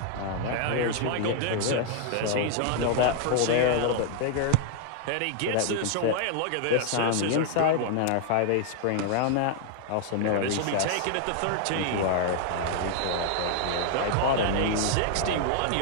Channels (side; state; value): both; different; correlation 0.00